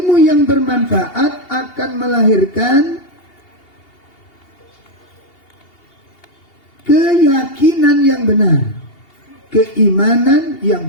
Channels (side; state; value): right; late; 2.8 ms